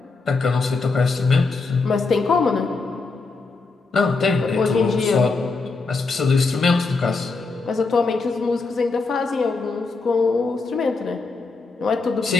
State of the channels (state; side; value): quieter; right; 4.0 dB